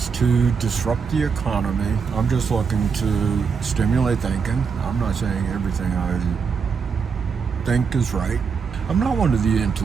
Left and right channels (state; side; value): quieter; left; 5.8 dB